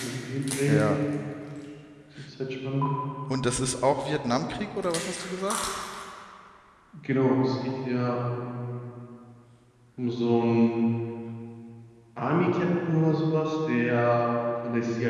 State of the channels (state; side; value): identical; both; correlation 1.00